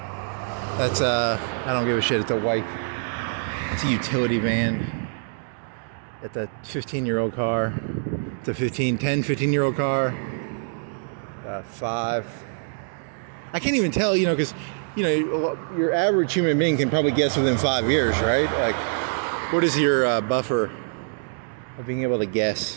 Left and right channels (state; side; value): silent; left; digital silence